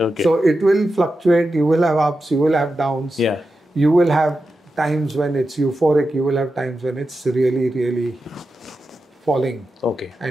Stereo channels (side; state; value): both; normal; correlation 0.90